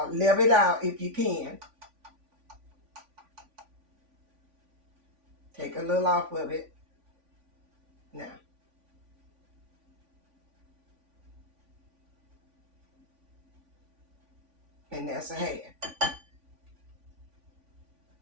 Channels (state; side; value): late; left; 3.5 ms